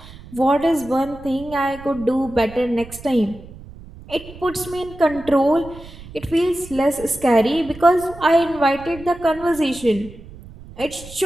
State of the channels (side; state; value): right; noise; rumble, 17 dB below the sound